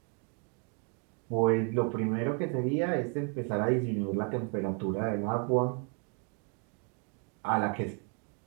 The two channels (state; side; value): quieter; left; 38.1 dB